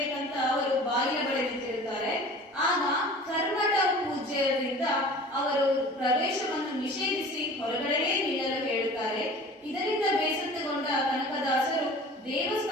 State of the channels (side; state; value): both; normal; correlation 0.42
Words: ಅವರು ಬಾಗಿಲ ಬಳಿ ನಿಂತಿರುತ್ತಾರೆ. ಆಗ ಕರ್ಮಠ ಪೂಜ್ಯರಿಂದ ಅವರು ಪ್ರವೇಶವನ್ನು ನಿಷೇಧಿಸಿ ಹೊರಗಡೆಯೇ ನಿಲ್ಲಲು ಹೇಳುತ್ತಾರೆ. ಇದರಿಂದ ಬೇಸತ್ತುಗೊಂಡ ಕನಕದಾಸರು